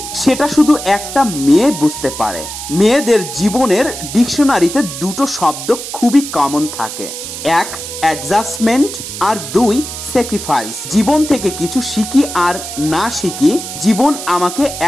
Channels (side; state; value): right; noise; hiss, 8 dB below the sound